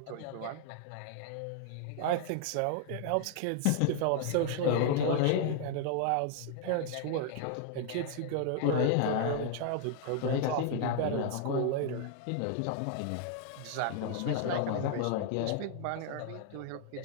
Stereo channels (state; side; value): different; both; correlation 0.00